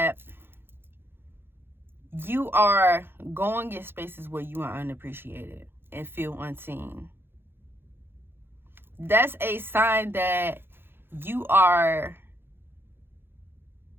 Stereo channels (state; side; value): late; left; 0.10 ms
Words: you are going in spaces where you are unappreciated and feel unseen. That's a sign that you are,